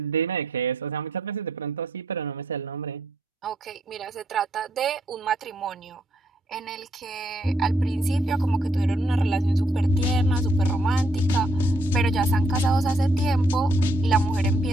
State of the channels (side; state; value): both; normal; correlation 0.72